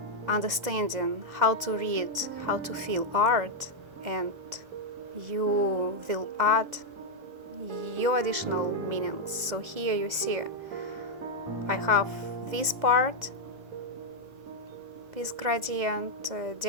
understanding how to read, how to feel art, and you will add your additional meanings. So here you see I have this part, this gradient,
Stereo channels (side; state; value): left; late; 2.0 ms